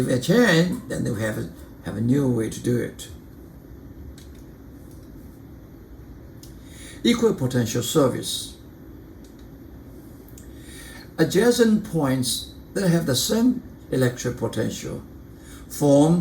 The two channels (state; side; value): identical; both; correlation 1.00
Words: it change, then we have a new way to do it. Equipotential surface. Adjacent points that have the same electric potential